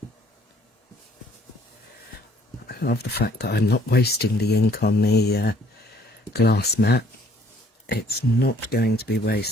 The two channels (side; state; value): both; normal; correlation 0.60